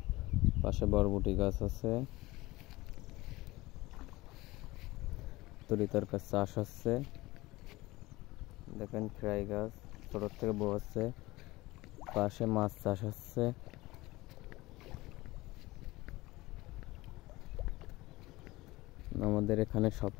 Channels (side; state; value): right; quieter; 19.9 dB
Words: পাশে বরবটি গাছ আছে, তরি তরকার চাষ হচ্ছে। দেখেন খেরাই গাছ ছোট থেকে বড় হচ্ছে। পাশে মাছ চাষ হচ্ছে। আমাদের এখানে সব